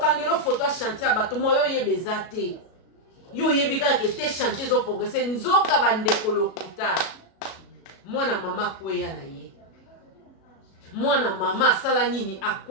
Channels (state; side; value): late; right; 37 ms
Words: photo ya chantier bato moyo yebeza te yo yebika ke te chantier zo progresser nzoka bandeko lokuta mwana mama kweya na ye mwana mama sala nini